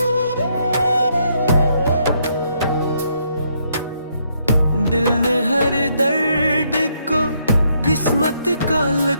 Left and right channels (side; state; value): both; inverted; correlation -0.73